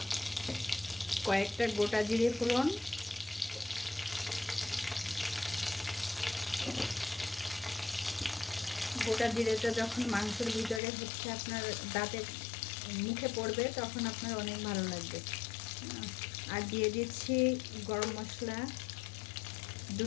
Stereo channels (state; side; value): drops out; right; at 10.8 s